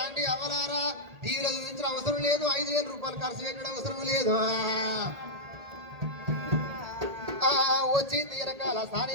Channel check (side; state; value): left; late; 1.8 ms